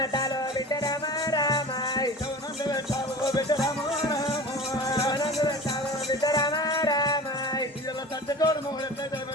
బిడ్డ రామ రామ నందు పెట్టావు ఓ బిడ్డ రాము రాము నందు పెట్టావు బిడ్డ రామ రామ ఇలా సచ్చటోడు మగుడు ఎట్లయితే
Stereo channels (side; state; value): both; normal; correlation 0.36